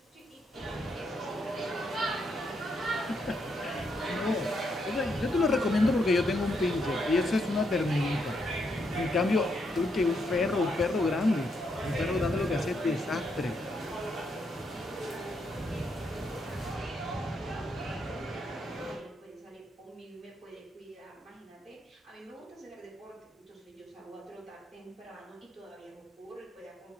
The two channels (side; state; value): both; normal; correlation 0.78